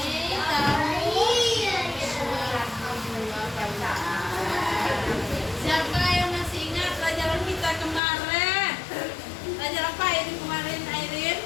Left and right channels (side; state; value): right; drops out; at 8.0 s